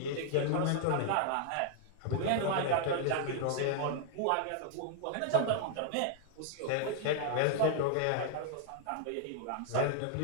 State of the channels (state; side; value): different; both; correlation 0.00